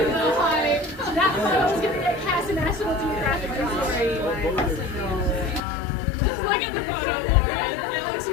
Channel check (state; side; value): drops out; right; at 5.6 s